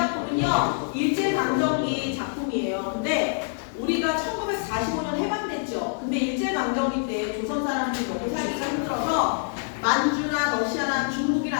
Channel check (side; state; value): right; silent; digital silence